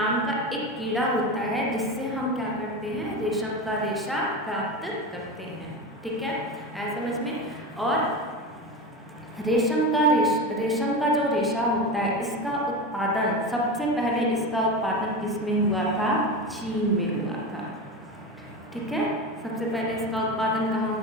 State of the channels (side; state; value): both; normal; correlation 0.23